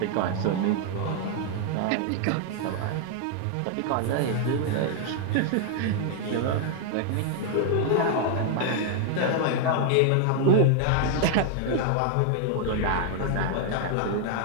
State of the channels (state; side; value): different; both; correlation 0.00